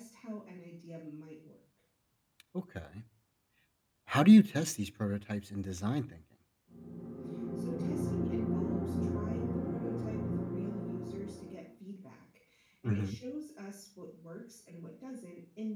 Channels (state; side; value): identical; both; correlation 1.00